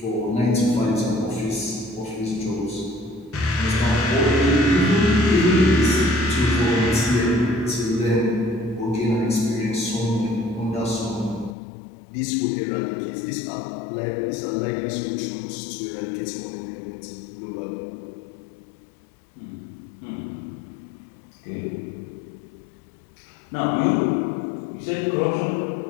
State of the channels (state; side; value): drops out; right; at 11.6 s